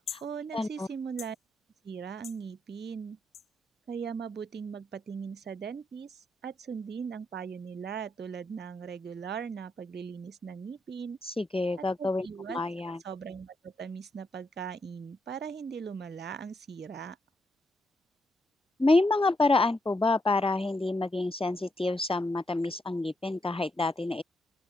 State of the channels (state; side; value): normal; both; correlation 0.80